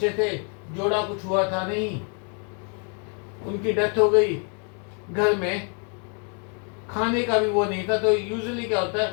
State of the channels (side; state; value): right; quieter; 39.4 dB